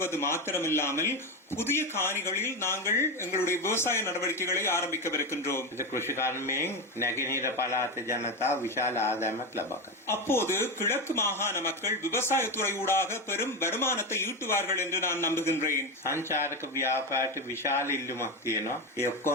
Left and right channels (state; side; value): normal; both; correlation 0.15